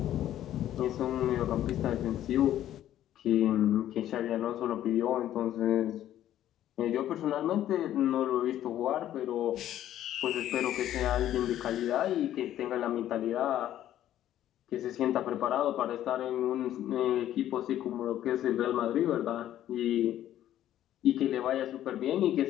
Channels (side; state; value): right; quieter; 12.2 dB